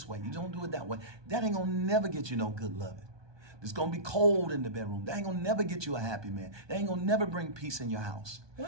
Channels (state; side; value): late; left; 1.2 ms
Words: way. You don't do it that way. That ain't going to never get you no good loving. It's going to be cold in the bedroom. That ain't going to never get you a happy man. That ain't going to never bring peace in your house.